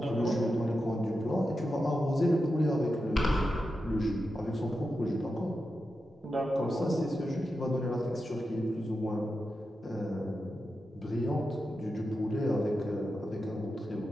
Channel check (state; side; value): normal; both; correlation 0.89